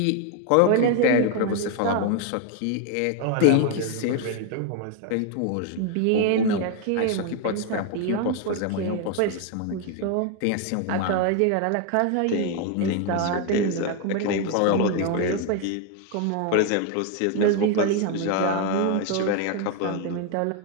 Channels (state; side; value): different; both; correlation 0.01